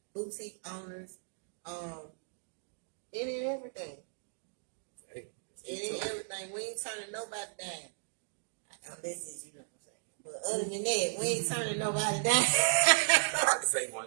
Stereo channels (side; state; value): left; silent; digital silence